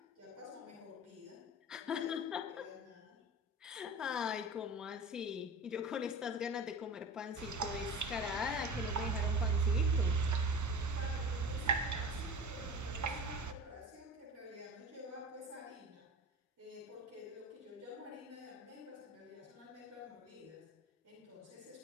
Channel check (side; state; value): both; normal; correlation 0.34